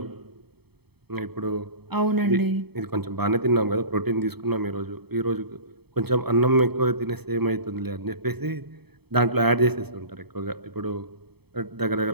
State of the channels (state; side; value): late; left; 0.97 ms